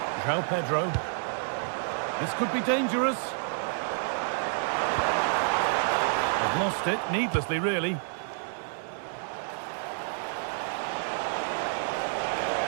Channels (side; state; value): left; silent; 58 dB below the other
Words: João Pedro. This could be dangerous. They've lost it, needlessly really. And